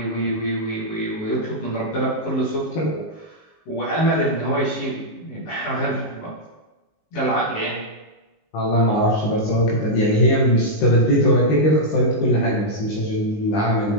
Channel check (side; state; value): right; late; 19 ms